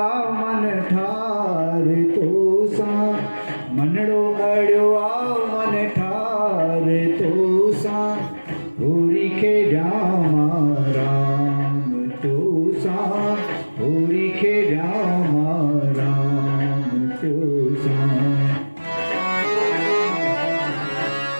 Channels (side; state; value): both; inverted; correlation -1.00